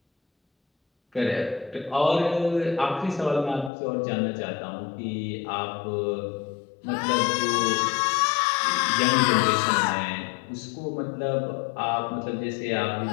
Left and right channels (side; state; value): right; drops out; at 3.7 s